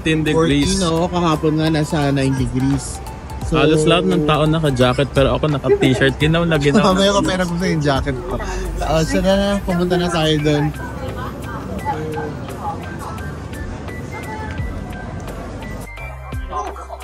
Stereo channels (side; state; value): both; identical; correlation 1.00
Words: degrees. 14, no? Kahapon nga nasa 9 degrees. So, halos lahat ng tao naka-jacket pero ako naka-t-shirt. Ginaw na ginaw. Mamaya ko pera ko sa yung jacket ko. So na, pumunta na tayo doon.